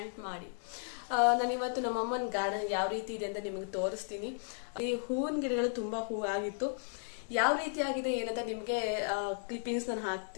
ಮಾಡಿ. ನಾನು ಇವತ್ತು ನಮ್ಮ ಅಮ್ಮನ ಗಾರ್ಡನ್ ಯಾವ ರೀತಿ ಇದೆ ಅಂತ ನಿಮಗೆ ತೋರಿಸ್ತೀನಿ. ಈ ಹೂವಿನ ಗಿಡಗಳು ತುಂಬಾ ಹೂ ಆಗಿತ್ತು. ಯಾವ ರೀತಿ ಆಗಿದೆ ಏನಂತ ನಿಮ್ಗೆ ಕ್ಲಿಪ್ಪಿಂಗ್ಸ್ ನಾನು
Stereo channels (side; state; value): right; silent; digital silence